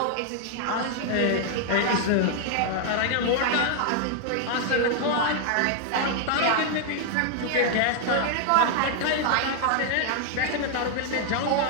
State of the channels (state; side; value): different; both; correlation -0.01